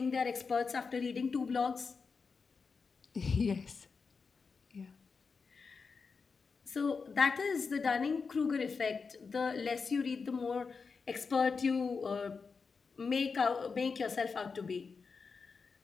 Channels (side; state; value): right; quieter; 5.0 dB